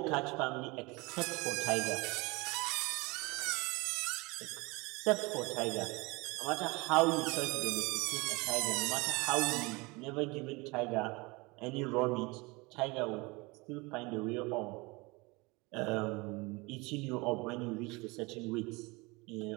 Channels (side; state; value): left; quieter; 25.3 dB